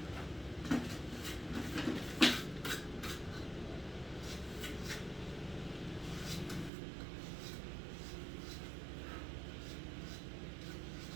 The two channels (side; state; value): left; drops out; at 6.7 s